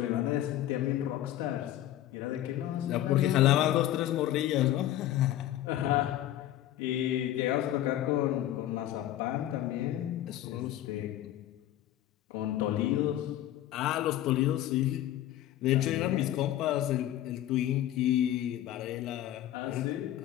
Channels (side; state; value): right; quieter; 13.0 dB